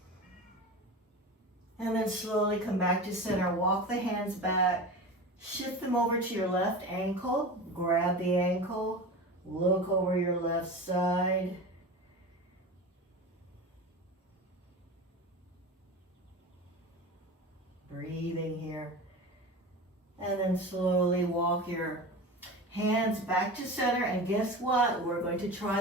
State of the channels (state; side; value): normal; both; correlation 0.30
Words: And then slowly come back to center. Walk the hands back. Shift them over to your left ankle. Grab the ankle. Look over your left side. Breathing here. And then slowly walk your hands back to center, and guess what? We're going to